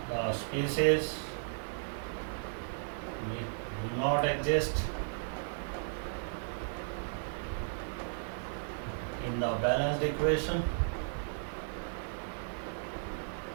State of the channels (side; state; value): left; silent; 54 dB below the other